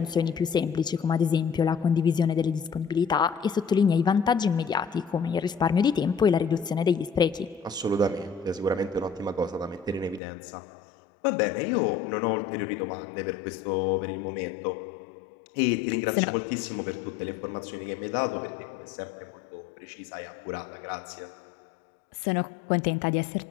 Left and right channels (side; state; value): right; drops out; at 10.2 s